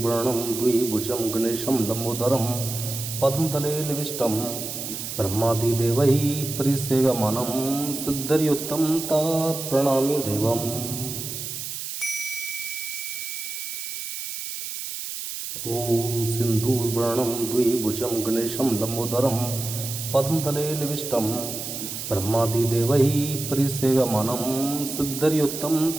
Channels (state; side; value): noise; right; hiss, 6 dB below the sound